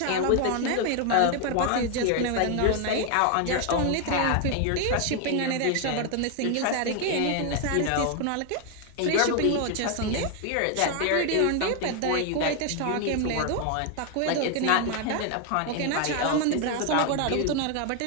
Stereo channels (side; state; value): both; different; correlation 0.01